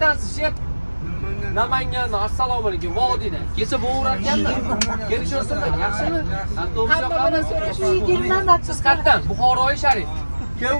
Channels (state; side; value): inverted; both; correlation -1.00